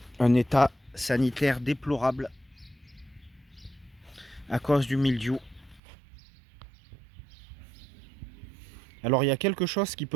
Un état sanitaire déplorable à cause du mildiou. Alors il y a quelque chose qui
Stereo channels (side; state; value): left; drops out; at 5.8 s